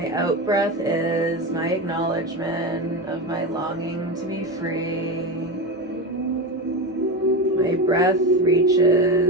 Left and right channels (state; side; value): normal; both; correlation 0.19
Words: out-breath is my acknowledgement of my longing to be free. My breath